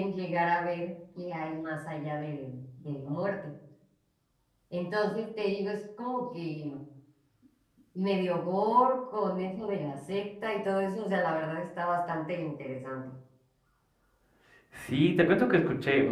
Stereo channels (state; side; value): identical; both; correlation 1.00